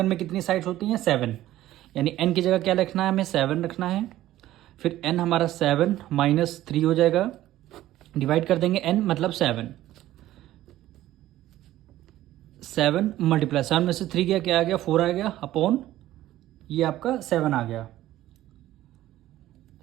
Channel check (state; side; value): quieter; left; 14.4 dB